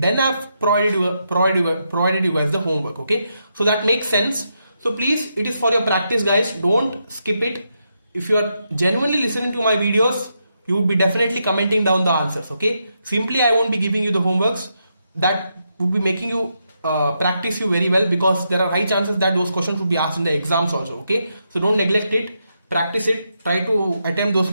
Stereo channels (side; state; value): both; inverted; correlation -0.82